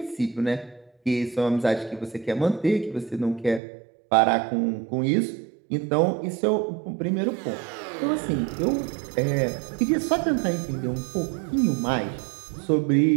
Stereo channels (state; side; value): drops out; left; at 3.6 s